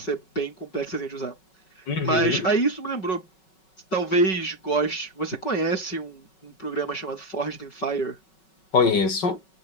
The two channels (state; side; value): late; right; 5.4 ms